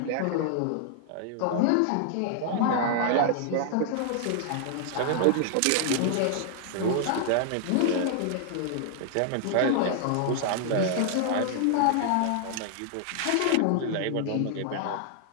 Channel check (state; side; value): different; both; correlation 0.00